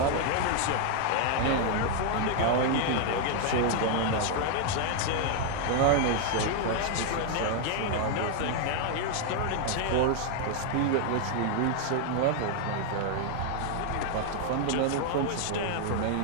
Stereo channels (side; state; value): both; different; correlation 0.00